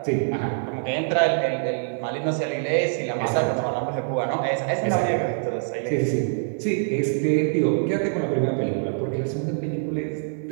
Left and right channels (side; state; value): left; silent; 55 dB below the other